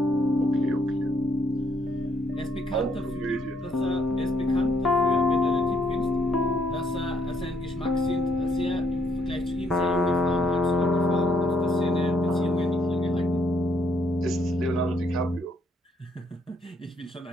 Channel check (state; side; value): normal; both; correlation 0.71